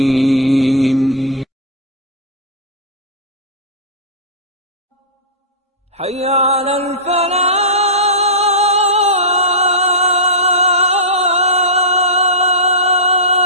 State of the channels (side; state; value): both; normal; correlation -0.14